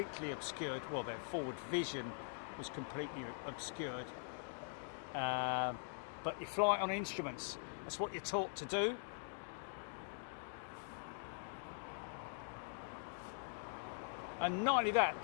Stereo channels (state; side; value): silent; right; digital silence